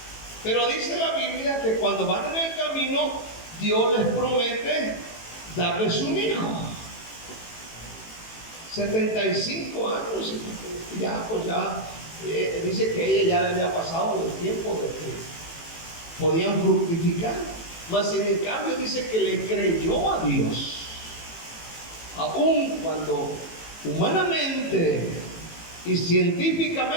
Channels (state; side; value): late; right; 18 ms